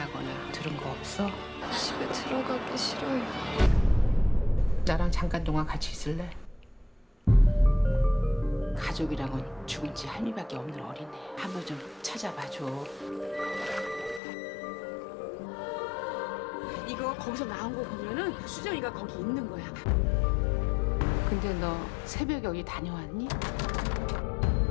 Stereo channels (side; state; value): right; drops out; at 14.2 s